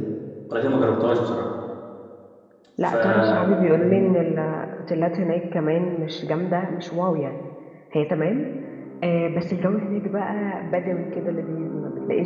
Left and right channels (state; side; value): identical; both; correlation 1.00